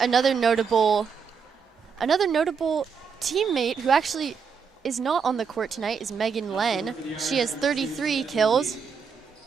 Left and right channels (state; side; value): quieter; left; 6.1 dB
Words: notable teammate who actually is not on the court tonight is Megan Len. She has 33 kills,